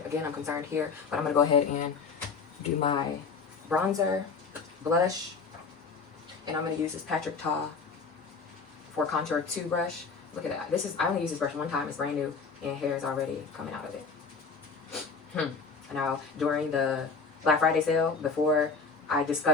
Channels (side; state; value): right; quieter; 4.8 dB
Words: Again, I'm concerned here, but I'm going to go ahead and do my bronzer, blush, and I'm going to use this Patrick Ta for Contour 2 brush. Look at that. I only use this brush one time. It's brand new, and hair is already coming out of it. Now, during the Black Friday sale, before I